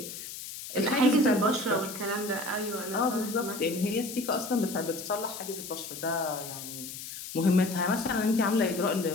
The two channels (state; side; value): noise; left; hiss, 10 dB below the sound